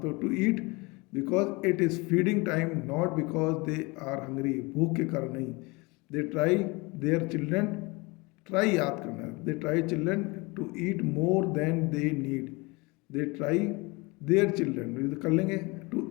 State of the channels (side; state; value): right; quieter; 25.9 dB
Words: तो to eat because it is feeding time, not because they are hungry, भूख के कारण नहीं। They try their children, try याद करना है, they try children to eat more than they need, they try their children कर लेंगे, टू